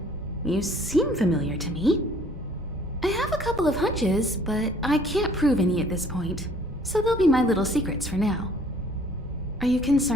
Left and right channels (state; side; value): normal; both; correlation 0.56